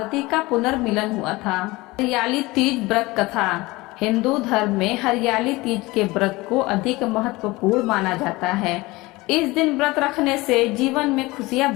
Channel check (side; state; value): right; quieter; 21.5 dB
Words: का पुनर्मिलन हुआ था। हरियाली तीज व्रत कथा। हिंदू धर्म में हरियाली तीज के व्रत को अधिक महत्वपूर्ण माना जाता है। इस दिन व्रत रखने से जीवन में खुशियां